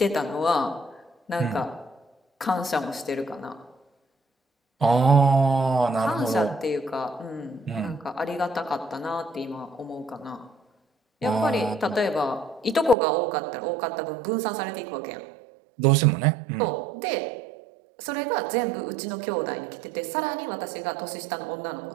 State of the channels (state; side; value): drops out; left; at 13.0 s